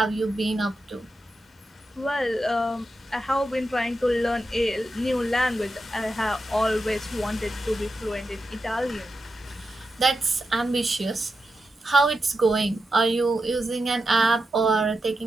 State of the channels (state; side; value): normal; both; correlation 0.89